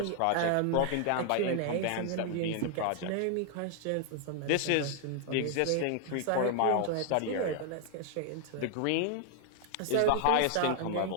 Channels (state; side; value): different; both; correlation 0.00